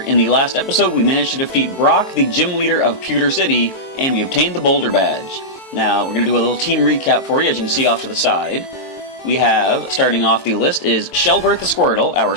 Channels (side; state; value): right; late; 22 ms